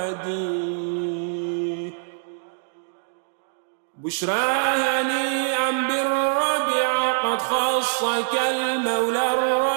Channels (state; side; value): silent; left; digital silence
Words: بشرى هنيئا بالربيع قد خصك المولى